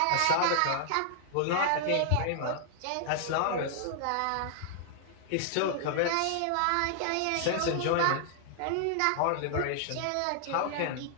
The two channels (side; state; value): both; different; correlation 0.00